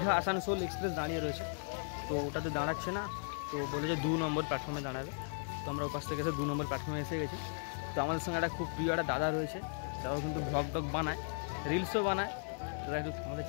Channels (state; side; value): silent; right; digital silence